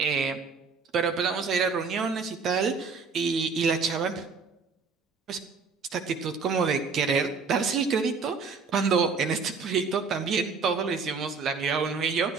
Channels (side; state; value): left; quieter; 5.1 dB